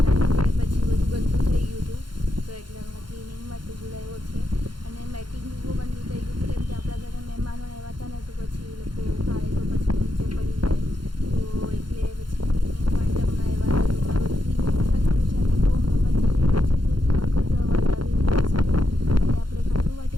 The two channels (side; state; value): left; late; 0.72 ms